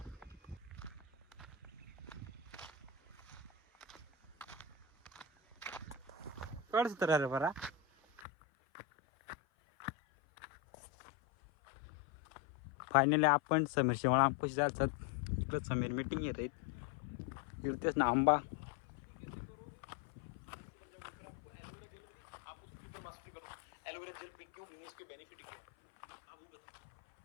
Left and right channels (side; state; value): right; drops out; at 8.2 s